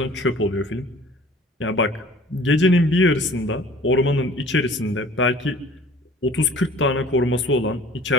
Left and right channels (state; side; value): normal; both; correlation 0.49